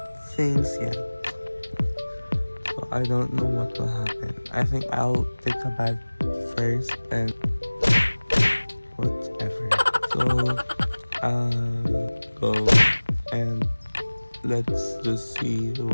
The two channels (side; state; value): both; inverted; correlation -1.00